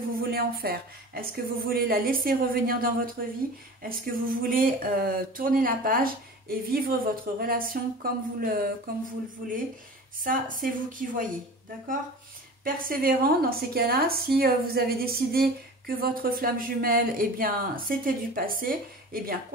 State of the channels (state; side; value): normal; both; correlation 0.37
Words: voulez en faire. Est-ce que vous voulez la laisser revenir dans votre vie? Est-ce que vous voulez tourner la page et vivre votre relation comme vous le voulez? Ça, c'est vous qui voyez, d'accord? Persévérant, dans ces cas-là, si vous avez décidé que votre flamme jumelle, eh bien, c'était du passé, eh bien,